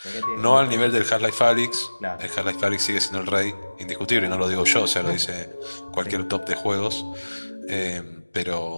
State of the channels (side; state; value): both; inverted; correlation -1.00